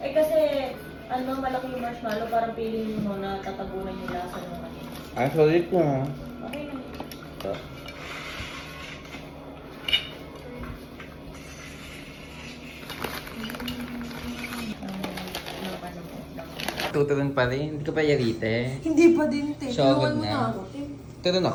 kasi, ano, malaki yung marshmallow, parang feeling mo na tatabunan yung lasa ng ano. Ay, solid ko ha. Okay na. Tuturun pa rin. Hindi ka pa yarite. Hindi pa din, te. Sure, Tulungan mo good na. na ako, te. Turun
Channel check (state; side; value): identical; both; correlation 1.00